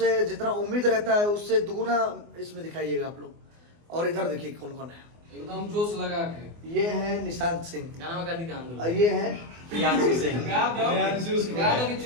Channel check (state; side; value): late; left; 24 ms